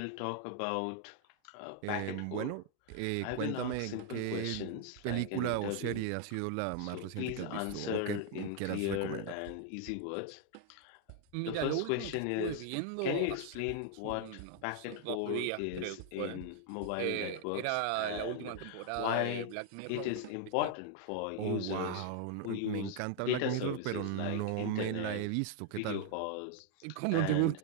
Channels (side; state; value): both; different; correlation 0.00